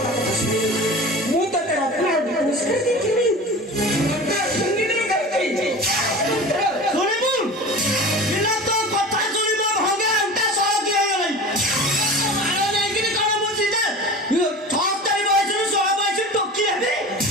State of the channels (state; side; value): normal; both; correlation 0.35